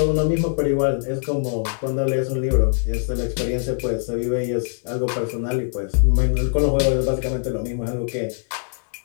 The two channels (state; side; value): silent; right; 64 dB below the other